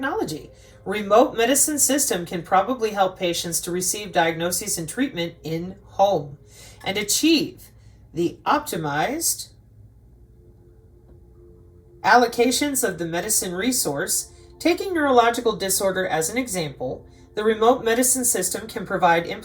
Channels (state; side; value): identical; both; correlation 1.00